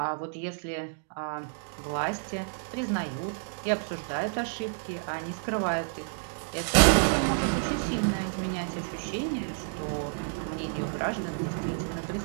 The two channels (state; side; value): silent; left; digital silence